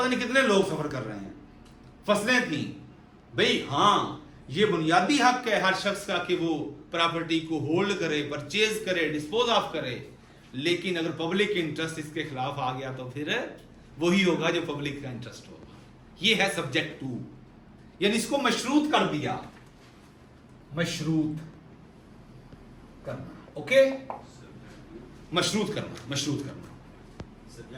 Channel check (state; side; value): identical; both; correlation 1.00